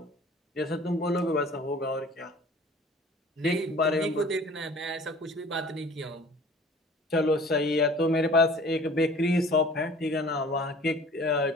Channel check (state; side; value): normal; both; correlation 0.47